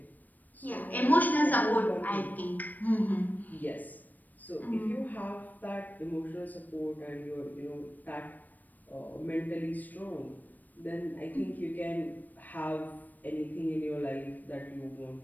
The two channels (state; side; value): late; right; 0.085 ms